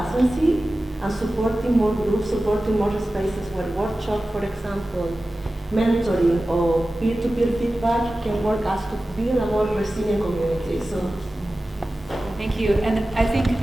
and supporting more groups, supporting more spaces where workshop, for example, mentoring or peer-to-peer feedback can work as to build a more resilient community. So. Thank you. And I think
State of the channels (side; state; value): both; normal; correlation 0.95